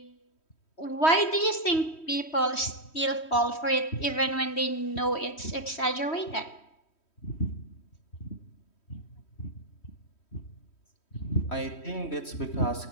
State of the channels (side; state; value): right; late; 3.1 ms